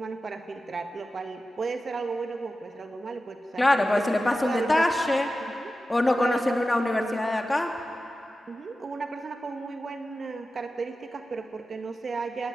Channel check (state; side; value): normal; both; correlation 0.93